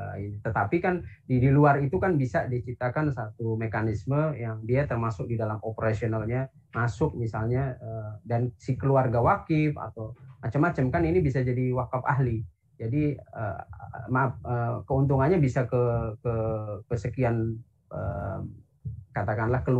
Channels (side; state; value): both; identical; correlation 1.00